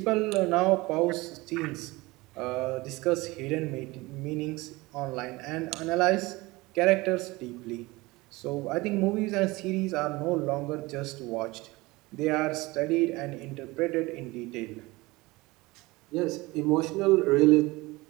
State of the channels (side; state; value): left; quieter; 21.8 dB